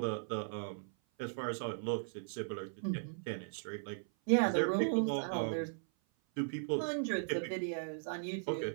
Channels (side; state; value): left; silent; 53 dB below the other